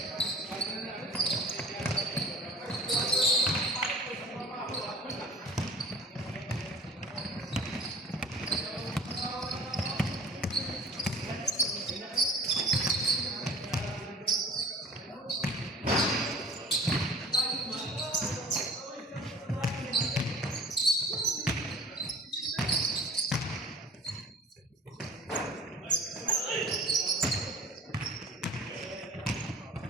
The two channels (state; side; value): normal; both; correlation 0.44